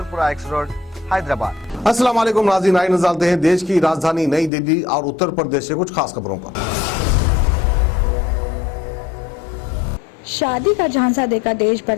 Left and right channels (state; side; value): drops out; right; at 4.5 s